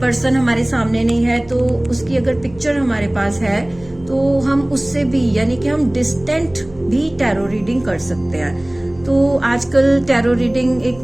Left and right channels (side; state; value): right; noise; rumble, 23 dB below the sound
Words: हमारे सामने नहीं है तो उसकी अगर पिक्चर हमारे पास है तो हम उससे भी यानी कि हम डिस्टेंट भी टैरो रीडिंग कर सकते हैं। तो आजकल टैरो रीडिंग एक